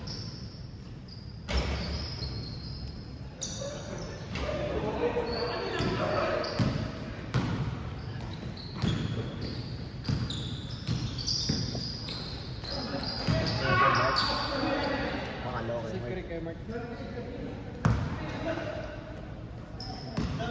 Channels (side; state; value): both; identical; correlation 1.00